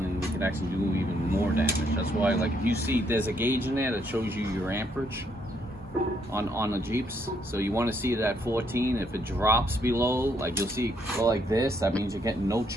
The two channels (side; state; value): both; normal; correlation 0.72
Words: and we could actually do even more damage. That's why, like, if you see there's a gauge in there that shows you your amperage on the Jeeps. So you want to see it at 14. If it drops below, like you'll see go like this, that means you're getting no